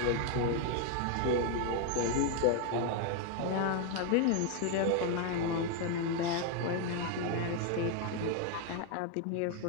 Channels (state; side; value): different; both; correlation 0.01